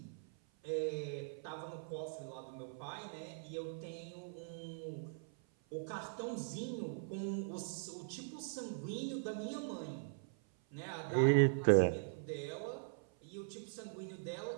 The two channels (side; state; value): left; silent; 50 dB below the other